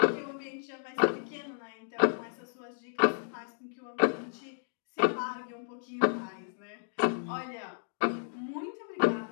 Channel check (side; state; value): right; silent; digital silence